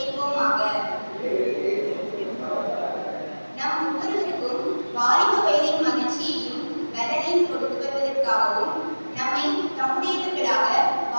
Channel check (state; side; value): inverted; both; correlation -1.00